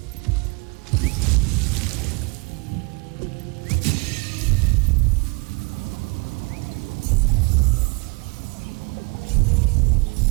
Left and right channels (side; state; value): left; quieter; 30.4 dB